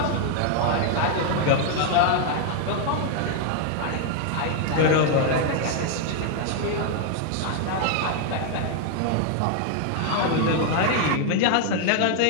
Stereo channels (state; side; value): different; both; correlation 0.00